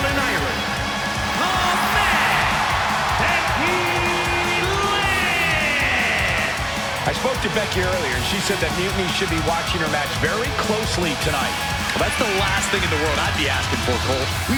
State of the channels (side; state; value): both; identical; correlation 1.00